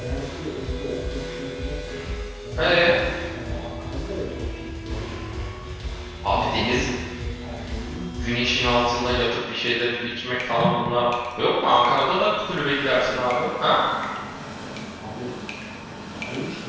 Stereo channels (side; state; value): both; identical; correlation 1.00